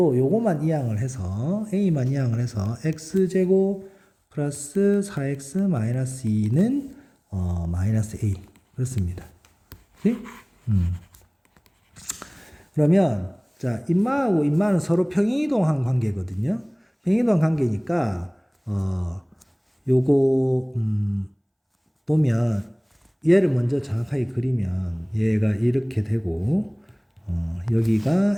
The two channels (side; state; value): both; identical; correlation 1.00